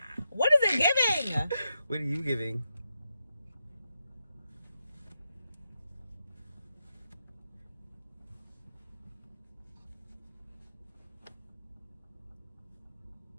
What is it giving? What are you giving?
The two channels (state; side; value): inverted; both; correlation -0.86